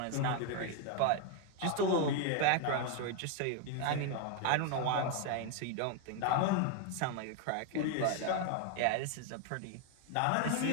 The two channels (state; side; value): different; both; correlation 0.01